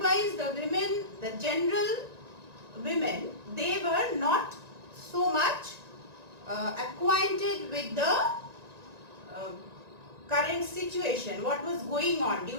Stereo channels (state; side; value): late; left; 1.9 ms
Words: the women, the general women, they were not so much acquainted with the current situation, what was going on